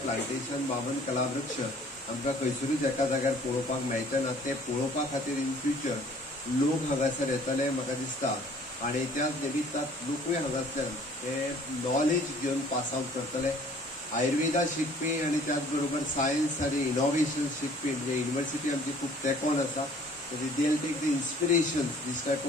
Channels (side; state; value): both; normal; correlation 0.54